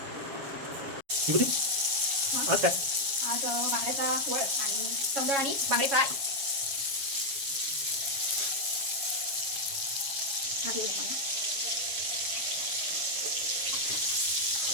विभूती आज काय? आज बांगड्याचा वळ आणि सौंदळ आणि बांगडे फ्राय.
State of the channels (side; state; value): left; late; 7.2 ms